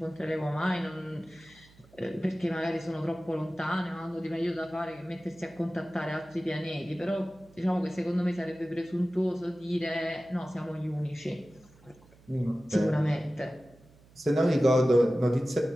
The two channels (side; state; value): right; noise; hum, 26 dB below the sound